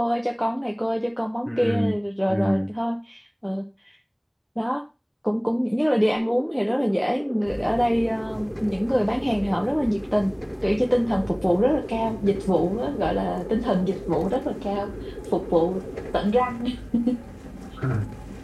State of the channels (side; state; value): both; identical; correlation 1.00